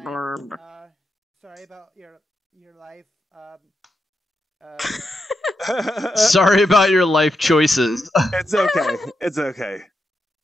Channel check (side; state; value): both; normal; correlation 0.85